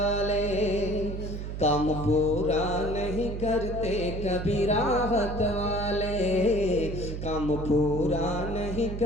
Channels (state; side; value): noise; right; hum, 6 dB below the sound